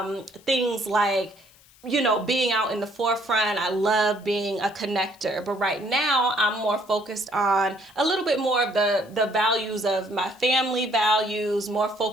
things like, you know, being out in the forefront. I love being a connector. But right now, I'm more focused on a little bit more of the values of my family values, more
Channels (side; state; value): left; noise; hiss, 27 dB below the sound